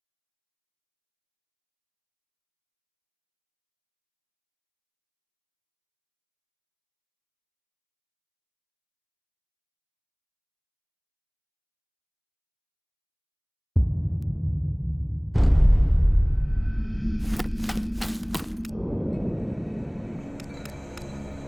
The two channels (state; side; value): identical; both; correlation 1.00